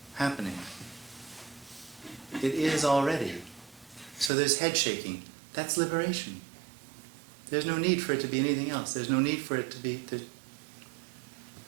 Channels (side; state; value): left; drops out; at 4.3 s